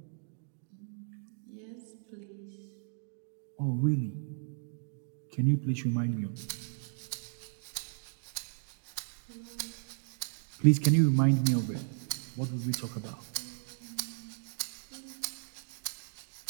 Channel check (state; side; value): silent; left; digital silence